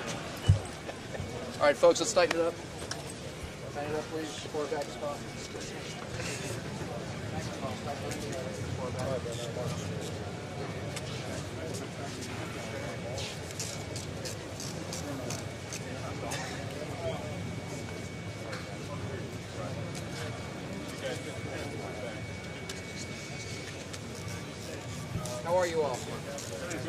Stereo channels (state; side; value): identical; both; correlation 1.00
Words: all right, folks, let's tighten it up. Tighten it up, please. Pour it back as possible. How are you all? Good.